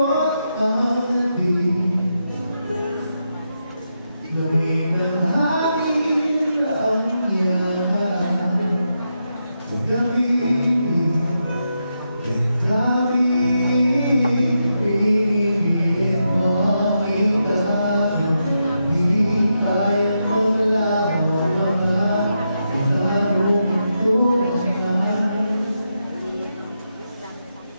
ang nabing. Gawin ang hangin ang yaman. Pagkabili, pinipilit mo ang itayo. Di kayang maglaho mga ilarong tulad.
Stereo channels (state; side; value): inverted; both; correlation -0.85